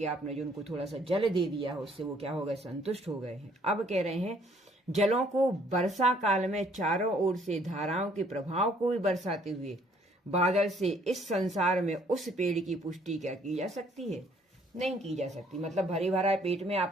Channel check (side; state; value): both; normal; correlation 0.62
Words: आपने जो उनको थोड़ा सा जल दे दिया है, उससे वो क्या हो गए, संतुष्ट हो गए हैं। अब कह रहे हैं जलों को वर्षा काल में चारों ओर से धाराओं के प्रभाव को भी बरसाते हुए बादल से इस संसार में उस पेड़ की पुष्टि क्या की जा सकती है, नहीं की जा सकती। मतलब भरे भरा पेट में